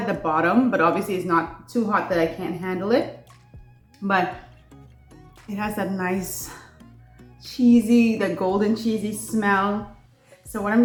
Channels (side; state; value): both; identical; correlation 1.00